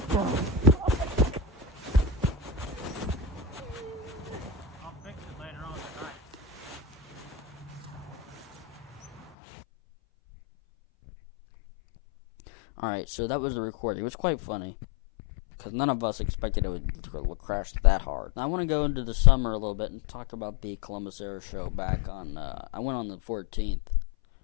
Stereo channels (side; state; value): right; drops out; at 9.2 s